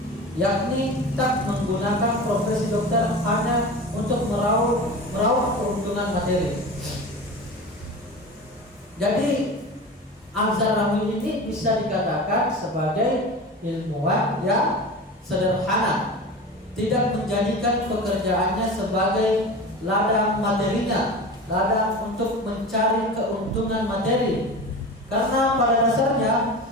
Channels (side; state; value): both; normal; correlation 0.31